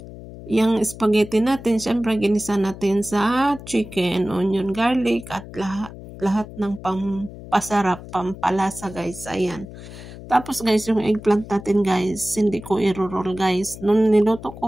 yung spaghetti natin, syempre ginisa natin sa chicken, onion, garlic at lahat ng pampasarap, pampalasa guys. Ayan. Tapos guys, yung eggplant natin guys, hindi ko i-roll guys. Nung niluto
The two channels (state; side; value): noise; left; hum, 14 dB below the sound